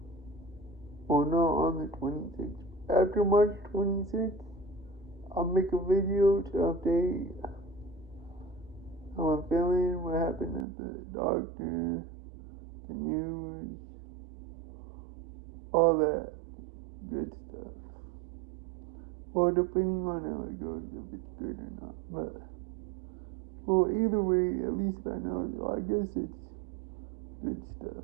on the 26th. After March 26th, I'll make a video to update how I'm feeling, what happened at the doctor, the news, all that good stuff. Well, depending on how it goes, if it's good or not. But, well, either way, at least I know, so I guess it's good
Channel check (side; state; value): left; drops out; at 10.7 s